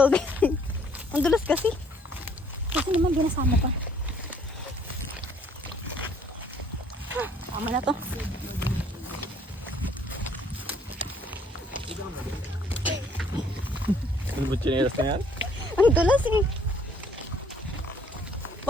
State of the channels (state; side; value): normal; both; correlation 0.61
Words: Ang dulas kasi. Kasi naman binasama pa. Tama na to. Ano ba chinelas na yan? Ang dulas eh.